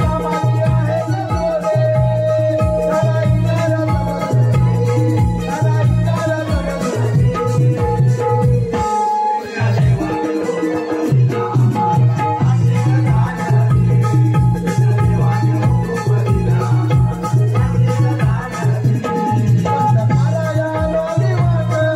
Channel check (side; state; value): both; identical; correlation 1.00